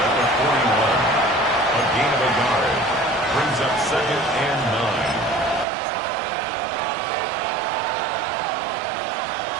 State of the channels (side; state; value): left; drops out; at 5.7 s